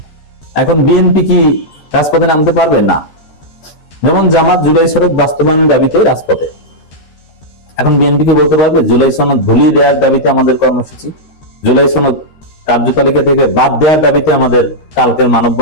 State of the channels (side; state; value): right; late; 13 ms